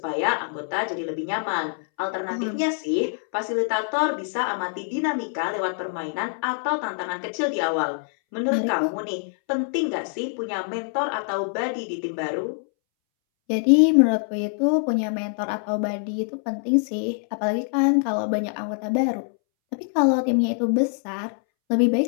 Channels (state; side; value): silent; right; 62 dB below the other